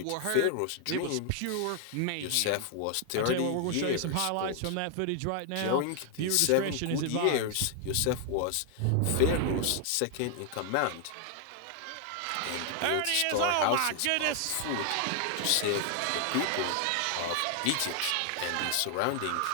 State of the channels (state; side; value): different; both; correlation 0.00